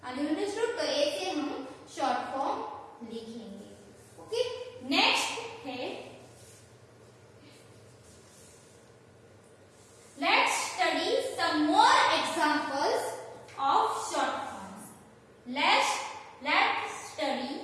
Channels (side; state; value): both; identical; correlation 1.00